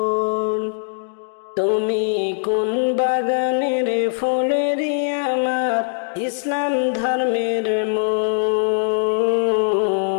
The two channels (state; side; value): silent; right; digital silence